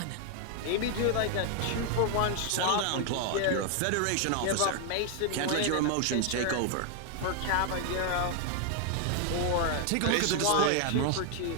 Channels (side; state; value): both; different; correlation 0.00